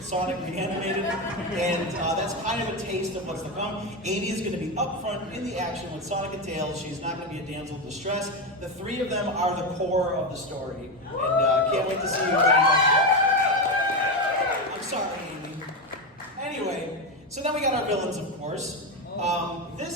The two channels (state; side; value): normal; both; correlation 0.13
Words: Sonic reanimated, and that's kind of a taste of what's to come. Amy is going to be up front in the action with Sonic and Tails. She's not going to be a damsel in distress. The three of them are the core of the story, and can't wait to see you. I'm sorry, Amy. Anyway, so then we got our villains, of course.